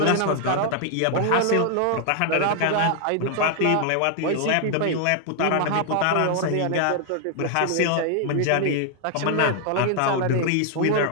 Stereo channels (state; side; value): different; both; correlation 0.00